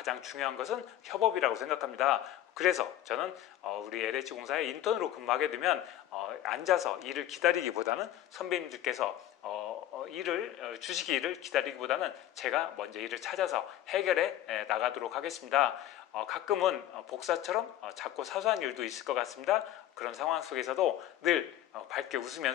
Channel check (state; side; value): quieter; right; 12.6 dB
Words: 중요한 것은 협업이라고 생각합니다. 그래서 저는 우리 LH공사에 인턴으로 근무하게 되면 앉아서 일을 기다리기보다는 선배님들께서 일을 주시기를 기다리기보다는 제가 먼저 일을 찾아서 해결해 나가도록 하겠습니다. 가끔은 복사처럼 작고 사소한 일도 있을 것 같습니다. 그런 상황 속에서도 늘 밝게